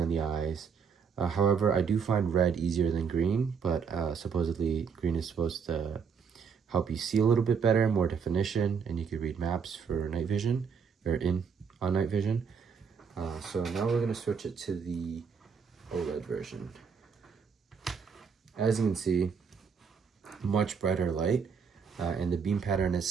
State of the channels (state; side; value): quieter; left; 6.2 dB